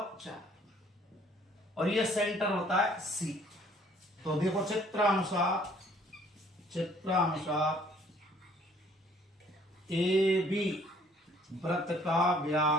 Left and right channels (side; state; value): both; normal; correlation 0.59